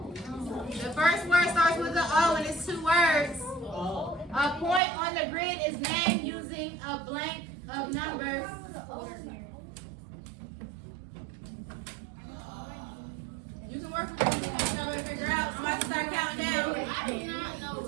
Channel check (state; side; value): drops out; left; at 4.8 s